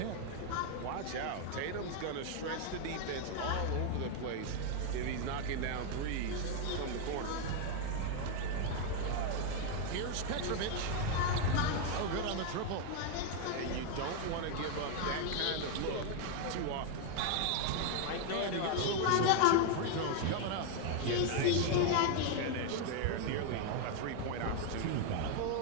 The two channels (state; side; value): different; both; correlation 0.00